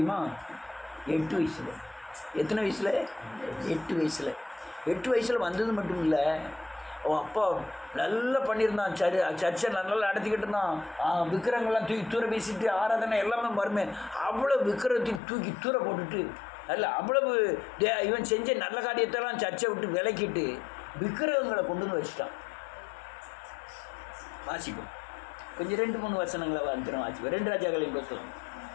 8 வயசில். எத்தனை வயசில்? 8 வயசில். 8 வயசில் வந்தது மட்டும் இல்லை, அவன் அப்பா நல்லா பண்ணியிருந்தான். சர்ச்சை நல்லா நடத்திக்கிட்டு இருந்தான். விக்கிரங்கள்லாம் தூக்கி தூர வீசிட்டு ஆராதனை எல்லாமே வருமே. அவ்வளோ விக்கிரத்தையும் தூக்கி தூர போட்டுட்டு, அல்ல அவ்வளவு இவன் செஞ்ச நல்ல காரியத்தெல்லாம் சர்ச்சை விட்டு விலக்கிட்டு விக்கிரகங்களை கொண்டு வந்து வச்சுட்டான். வாசிப்போம் கொஞ்சம் 2-3 வசனங்களை வந்துடும். வாசிப்போம். 2 ராஜாக்களின் புத்தகம்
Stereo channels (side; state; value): right; drops out; at 15.2 s